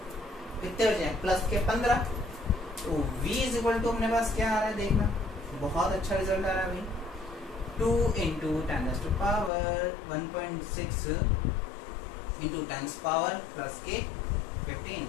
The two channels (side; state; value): right; drops out; at 9.5 s